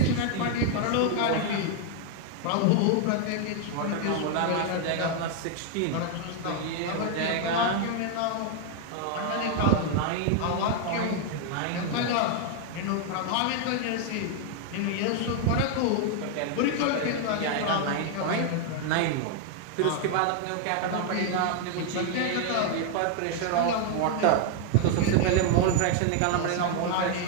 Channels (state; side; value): different; both; correlation 0.00